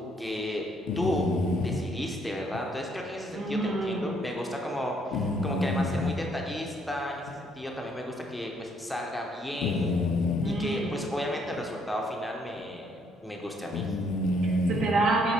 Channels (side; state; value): both; normal; correlation 0.68